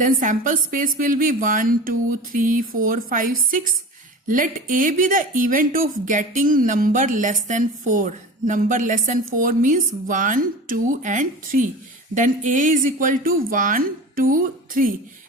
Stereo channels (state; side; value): normal; both; correlation 0.34